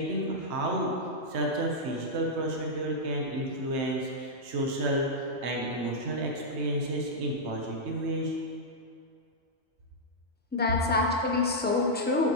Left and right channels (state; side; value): normal; both; correlation -0.07